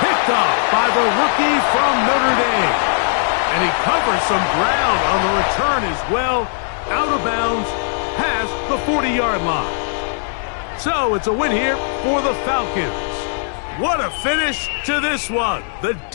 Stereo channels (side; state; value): right; silent; digital silence